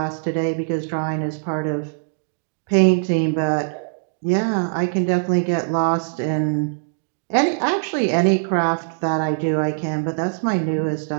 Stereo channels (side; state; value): left; silent; digital silence